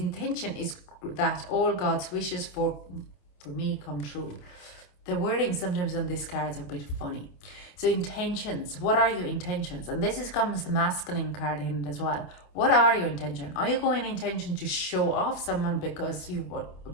is that all God's wishes for me come true. The wording sometimes on these cards are a bit funny. So intentions, what are your intentions? And this comes the masculine card in it as well. What are your intentions? Are you going intention to show off someone because you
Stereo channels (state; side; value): late; right; 28 ms